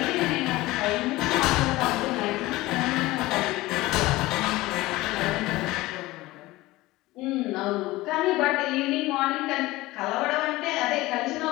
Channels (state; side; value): quieter; right; 19.0 dB